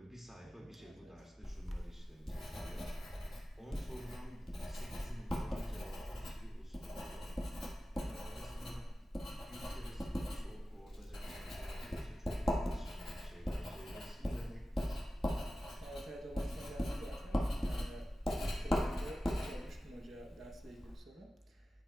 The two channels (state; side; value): normal; both; correlation 0.95